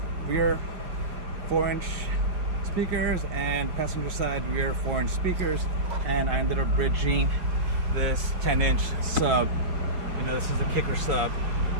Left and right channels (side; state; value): left; late; 5.3 ms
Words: rear 4-inch speakers, and passenger side rear 4-inch speakers. And I ended up bridging this 10-inch sub. You know, this is a kicker sub.